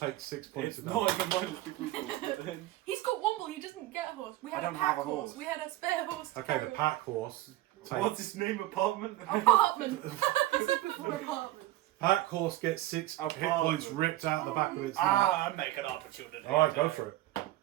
6 points It's of not damage. even mine. It's the group horse. But then- He's got Womble. He doesn't get a horse. We had I a don't pack have a horse. We had a spare horse. to Okay, the carry. pack horse What's takes. his name? Apartment. Apartment. I said before apartment. Pack horse gets 6 hit Apartment. points ripped out the back of its neck. I'm making opportunity. Alright, go for it.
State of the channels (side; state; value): left; quieter; 16.0 dB